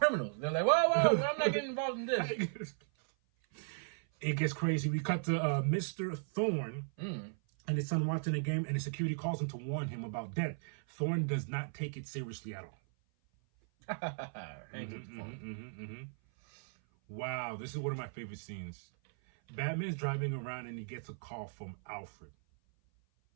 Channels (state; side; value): silent; left; 53 dB below the other